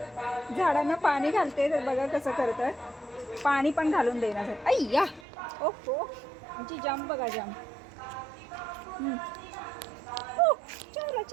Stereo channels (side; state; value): left; drops out; at 5.2 s